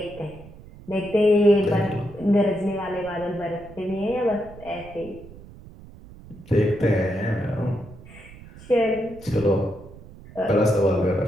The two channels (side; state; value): right; noise; rumble, 19 dB below the sound